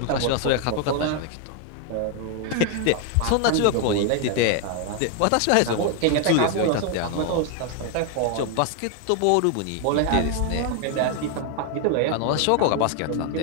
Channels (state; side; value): different; both; correlation 0.00